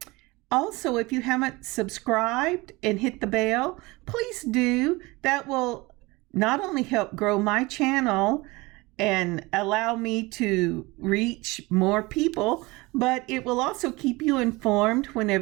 also, if you haven't subscribed and hit the bell, please do. That will not only help grow my channel and allow me to reach more people, but it will also keep you informed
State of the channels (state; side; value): quieter; left; 22.9 dB